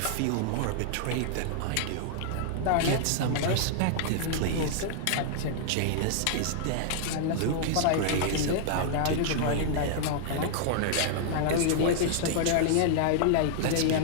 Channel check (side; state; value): both; different; correlation -0.01